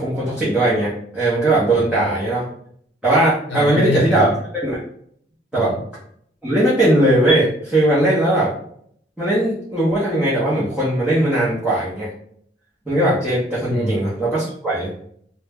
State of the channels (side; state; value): both; normal; correlation 0.57